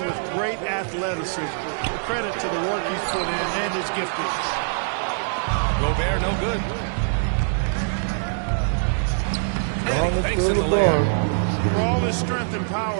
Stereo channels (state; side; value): silent; left; 60 dB below the other